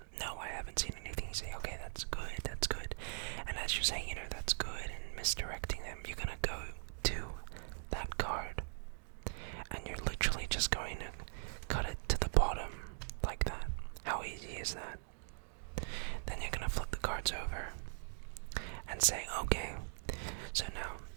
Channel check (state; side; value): silent; left; digital silence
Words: no, I haven't seen anything, you say, okay, that's good, and as you're saying, that's good, and misdirecting them, you're going to go to that card, and you're literally just going to cut it to the bottom, like that. How easy is that? Then you're going to flip the cards over, and say, okay, so now,